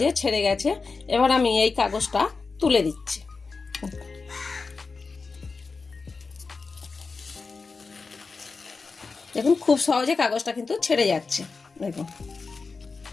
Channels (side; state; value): right; quieter; 4.4 dB